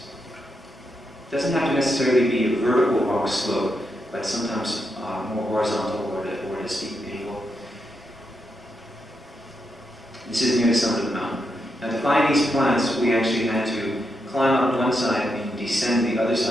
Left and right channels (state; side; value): normal; both; correlation 0.83